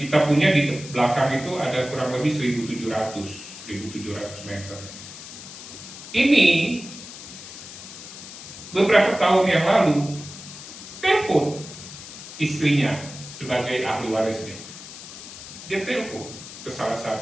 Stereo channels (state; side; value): noise; left; hiss, 13 dB below the sound